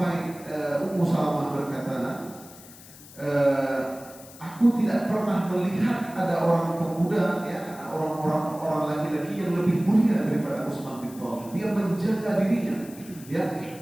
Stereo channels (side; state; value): left; noise; hiss, 19 dB below the sound